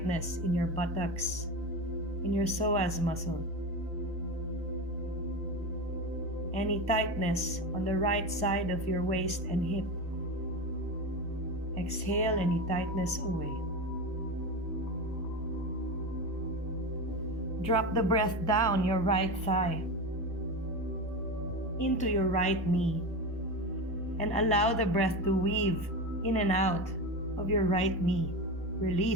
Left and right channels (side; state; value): right; noise; hum, 23 dB below the sound